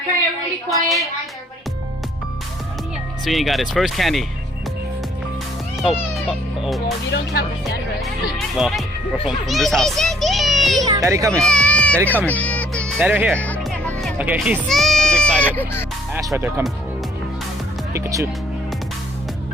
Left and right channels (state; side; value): normal; both; correlation 0.64